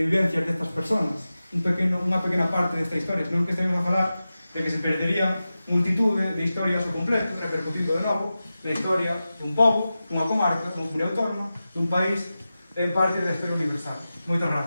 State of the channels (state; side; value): inverted; both; correlation -0.94